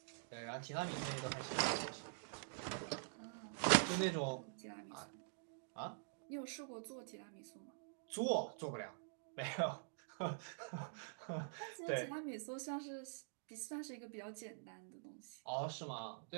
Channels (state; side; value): silent; left; digital silence